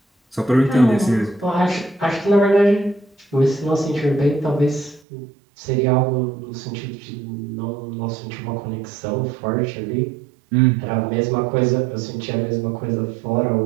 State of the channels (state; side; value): drops out; left; at 5.0 s